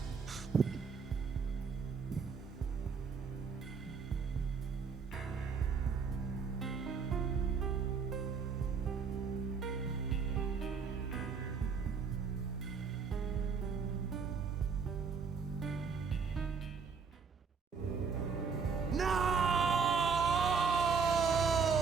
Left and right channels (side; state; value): left; quieter; 5.6 dB